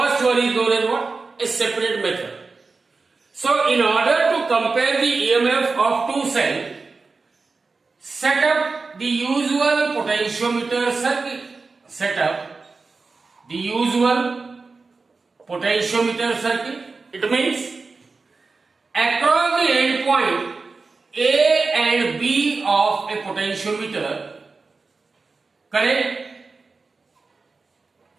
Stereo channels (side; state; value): left; quieter; 4.1 dB